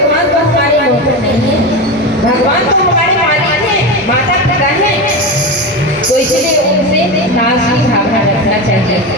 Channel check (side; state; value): both; normal; correlation 0.20